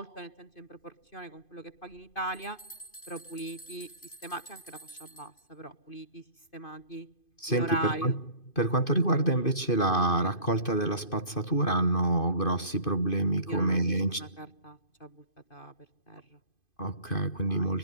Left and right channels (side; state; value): right; late; 2.5 ms